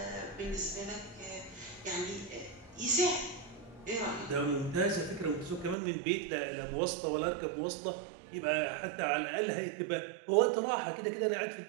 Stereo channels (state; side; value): drops out; left; at 5.8 s